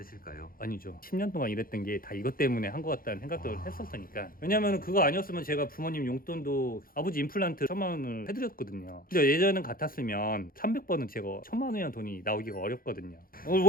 아니죠. 10년 동안 일했던 게 다 이것 때문에 한 것 같다는 생각도 했었으니까. 왜냐면 그거 아니었으면 제가 부모님 용돈도 아버지 임플란트 1,000만 원을 해드렸거든요. 근데 예전은 같았으면 300번은 제가 1,000만 원이라는 돈이 나오기가 어렵거든요.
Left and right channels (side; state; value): right; late; 0.42 ms